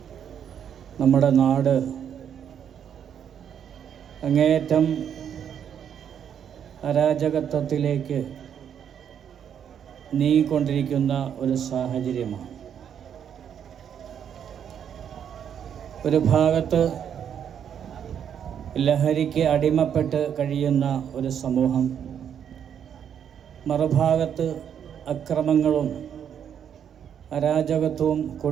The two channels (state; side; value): quieter; left; 8.6 dB